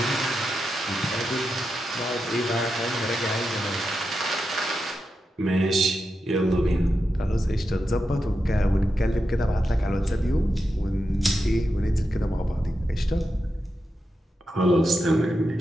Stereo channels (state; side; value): normal; both; correlation 0.88